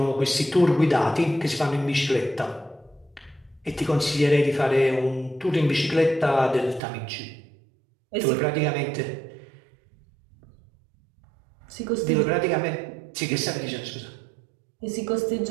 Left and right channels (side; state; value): left; drops out; at 6.8 s